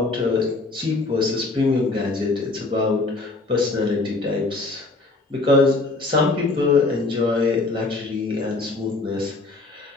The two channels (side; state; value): right; quieter; 3.4 dB